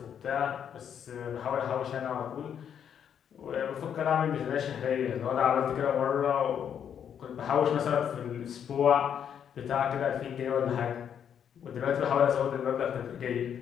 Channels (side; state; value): right; quieter; 8.5 dB